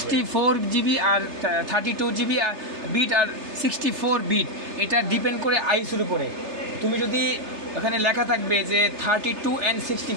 জিবি আর 32 জিবি বিট আর 64 বিট, এটা ডিপেন্ড করে আইএসওর উপরে। তুমি যদি ওখানে লেখা থাকবে যে 32 and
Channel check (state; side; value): late; left; 3.3 ms